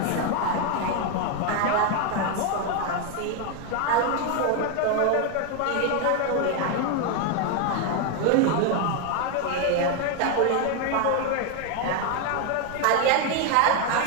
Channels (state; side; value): different; both; correlation 0.01